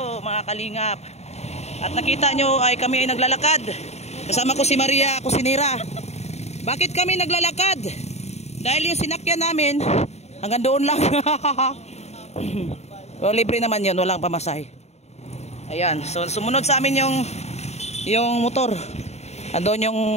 mga kalingap. At nakita nyo ay kami ay naglalakad. Kasama ko si Maria Kusinira. Bakit kami naglalakad? Dahil yung sinakyan namin hanggang doon lang. O, libre naman yun, walang pamasahe. Ayan, so sumunod sa amin yung motor. Andun yung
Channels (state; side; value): late; right; 0.32 ms